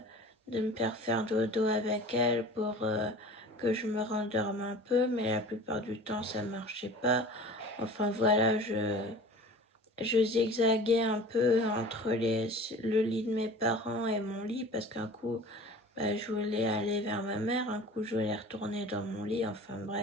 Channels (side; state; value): both; normal; correlation 0.40